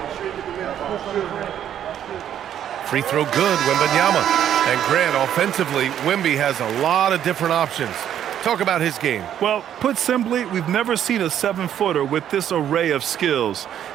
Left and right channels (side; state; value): left; quieter; 10.2 dB